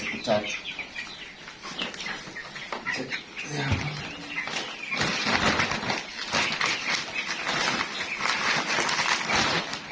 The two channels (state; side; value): identical; both; correlation 1.00